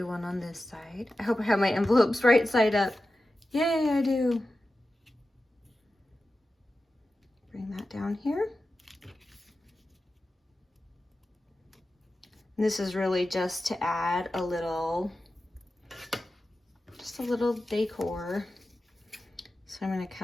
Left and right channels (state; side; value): normal; both; correlation 0.93